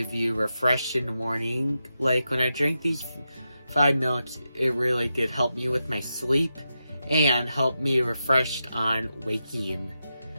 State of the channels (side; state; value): both; inverted; correlation -0.88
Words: you refreshed in the morning. Like when I drank these 5 milks, it really did help me with my sleep and help me refreshed on waking.